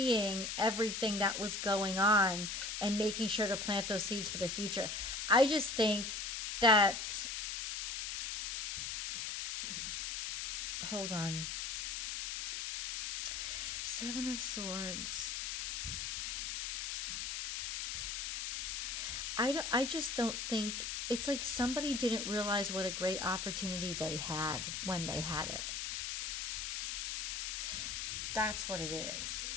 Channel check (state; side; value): noise; left; hiss, 3 dB below the sound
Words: everything that was going on and making sure to plant those seeds for the future. I just think that, hold on. Seven of Swords. I just don't think, it's like somebody didn't realize what a great opportunity they had when they had it. That's what it is.